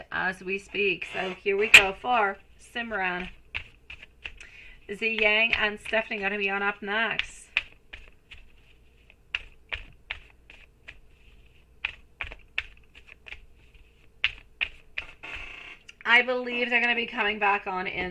as we speak. So here we go for Simran. Z Yang and Stephanie going to be on up next. I believe they're going to be coming back on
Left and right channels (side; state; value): both; identical; correlation 1.00